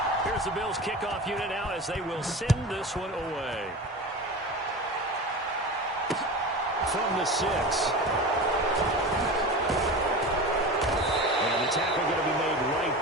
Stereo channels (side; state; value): both; normal; correlation 0.30